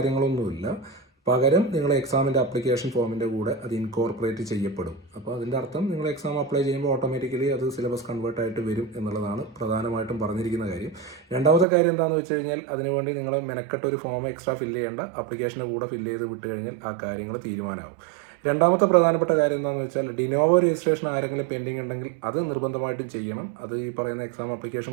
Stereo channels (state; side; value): drops out; left; at 11.7 s